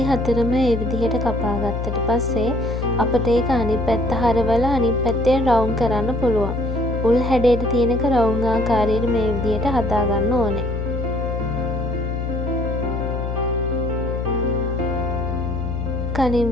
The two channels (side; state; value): left; noise; hum, 3 dB below the sound